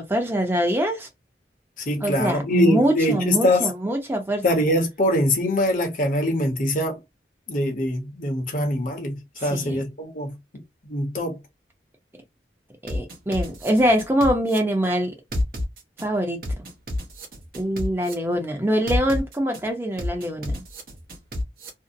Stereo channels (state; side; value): normal; both; correlation 0.65